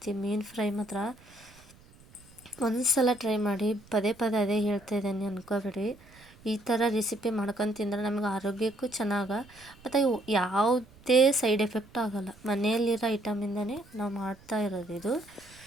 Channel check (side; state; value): right; noise; rumble, 25 dB below the sound